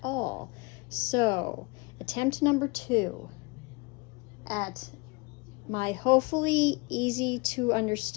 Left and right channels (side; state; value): right; quieter; 27.7 dB